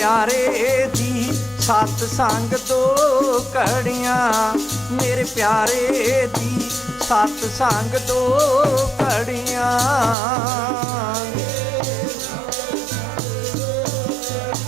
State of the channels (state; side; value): drops out; left; at 10.2 s